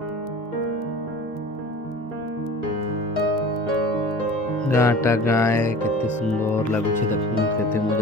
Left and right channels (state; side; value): normal; both; correlation 0.40